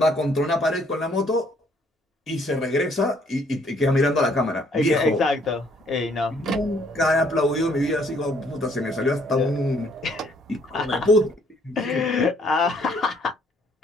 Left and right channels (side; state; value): both; normal; correlation 0.65